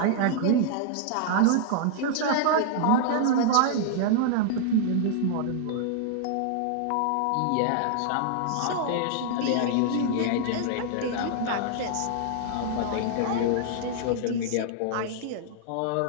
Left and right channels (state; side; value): different; both; correlation -0.01